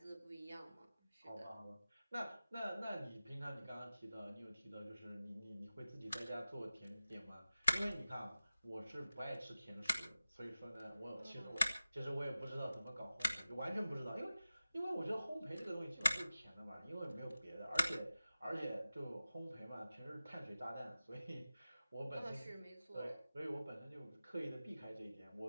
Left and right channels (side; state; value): both; inverted; correlation -0.95